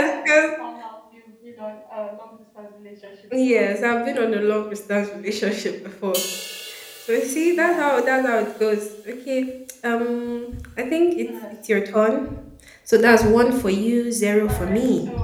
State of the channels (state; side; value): identical; both; correlation 1.00